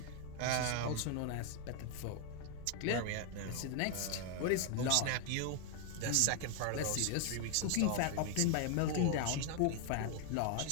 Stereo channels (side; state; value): both; different; correlation 0.00